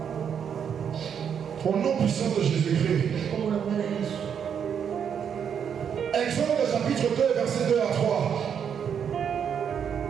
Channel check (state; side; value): quieter; left; 7.8 dB